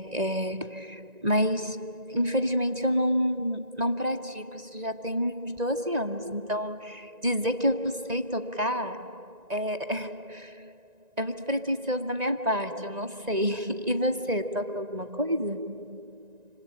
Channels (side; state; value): left; late; 1.9 ms